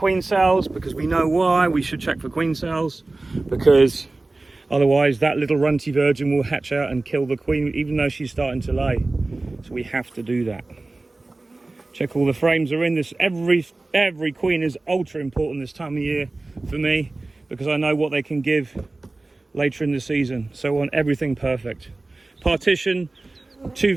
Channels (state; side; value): quieter; left; 3.1 dB